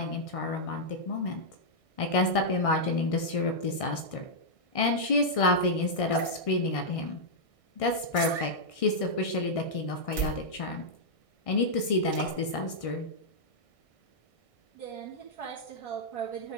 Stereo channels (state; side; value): late; right; 1.6 ms